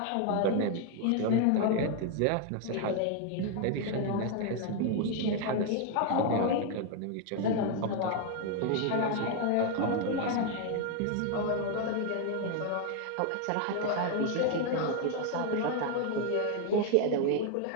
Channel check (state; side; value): different; both; correlation 0.01